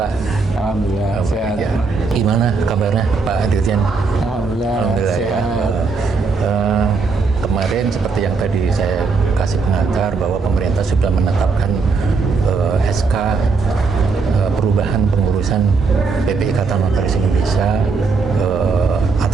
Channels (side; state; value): left; quieter; 4.5 dB